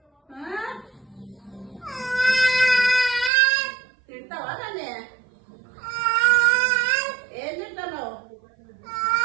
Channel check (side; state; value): left; drops out; at 3.3 s